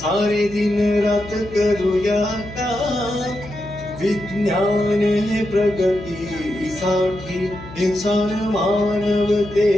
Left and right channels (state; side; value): noise; left; hum, 16 dB below the sound